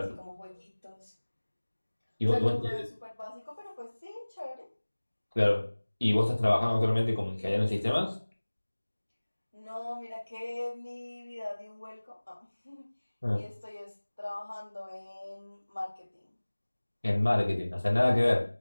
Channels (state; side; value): inverted; both; correlation -1.00